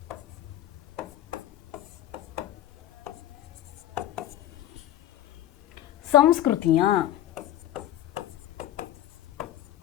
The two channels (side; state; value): right; quieter; 12.7 dB